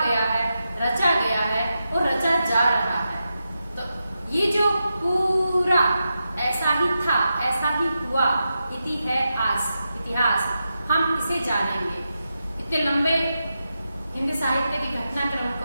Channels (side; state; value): both; inverted; correlation -0.89